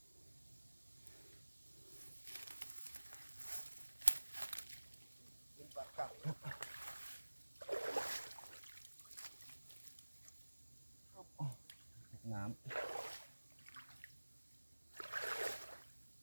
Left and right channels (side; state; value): both; inverted; correlation -1.00